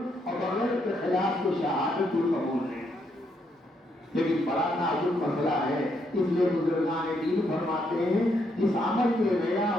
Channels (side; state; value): both; normal; correlation 0.75